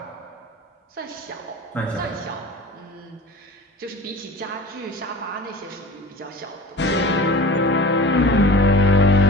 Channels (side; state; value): both; normal; correlation 0.39